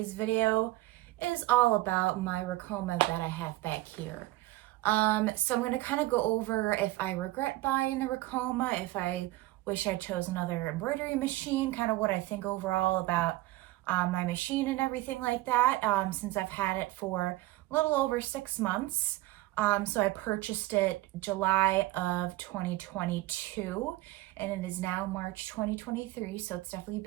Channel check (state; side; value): quieter; left; 18.0 dB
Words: video is all about my Ricoma that I have back here. So I'm going to kind of go over if I regret buying the Ricoma, if I wish I chose another embroidery machine, kind of what I think overall about my machine and everything like that, since I've had it for a little over 6 months. So I purchased it July of 2022, and it is now March 2023, so it's definitely